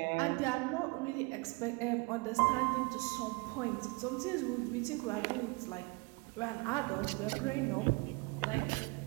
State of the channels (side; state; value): left; quieter; 28.0 dB